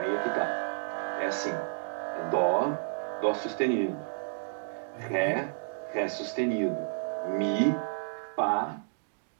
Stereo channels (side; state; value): left; silent; digital silence